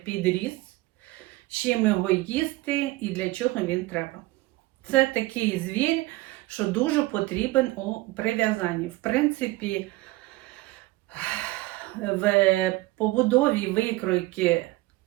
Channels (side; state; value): left; quieter; 19.8 dB